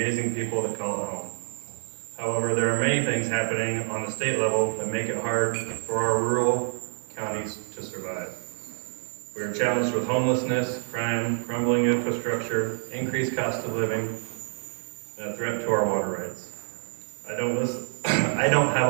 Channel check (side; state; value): left; silent; 60 dB below the other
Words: people that call it home. However, there are many things happening on the state level that make it hard for our rural counties to survive. We are challenged with homelessness, crime, crumbling infrastructure, increased cost of living, and a threat to our water rights. I don't have